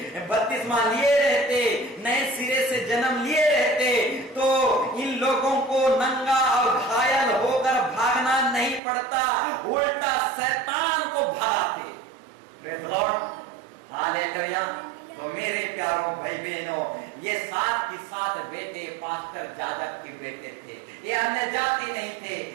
बपतिस्मा लिए रहते, नए सिरे से जन्म लिए रहते, तो इन लोगों को नंगा और घायल होकर भागना नहीं पड़ता, उल्टा शैतान को भगाते। Praise Lord, hallelujah. तो मेरे प्यारों भाई बहनों, ये 7 की 7 बेटे पास्टर जाजक के बेटे थे। ये अन्य जाति नहीं थे,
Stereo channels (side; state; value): left; drops out; at 8.8 s